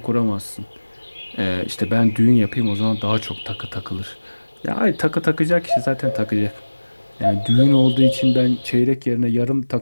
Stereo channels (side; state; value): both; inverted; correlation -1.00